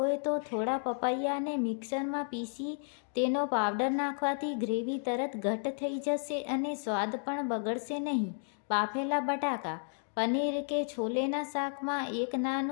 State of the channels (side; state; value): right; silent; 56 dB below the other